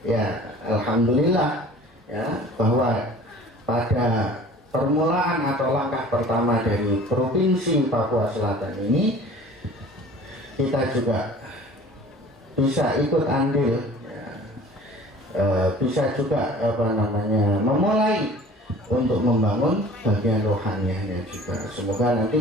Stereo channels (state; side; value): normal; both; correlation 0.46